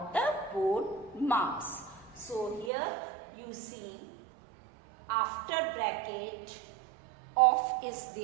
the board marks. So here you see after bracket off is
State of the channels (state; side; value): drops out; left; at 2.7 s